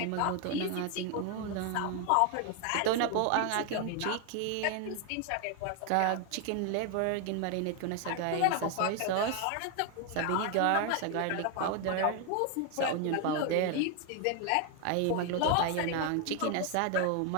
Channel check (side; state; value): both; different; correlation 0.01